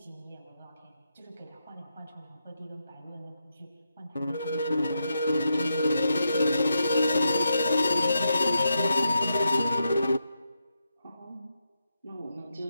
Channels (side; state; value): both; inverted; correlation -0.84